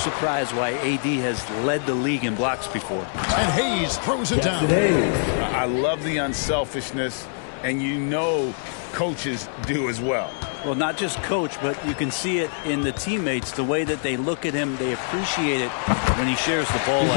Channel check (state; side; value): silent; right; digital silence